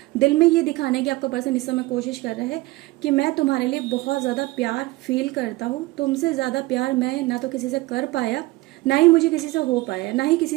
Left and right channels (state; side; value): quieter; left; 20.4 dB